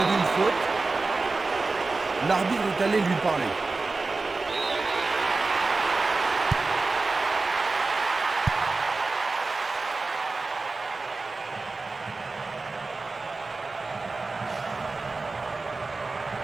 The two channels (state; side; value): quieter; left; 3.7 dB